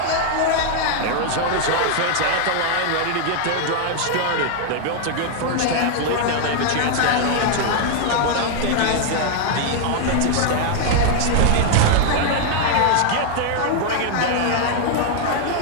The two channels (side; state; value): both; different; correlation 0.00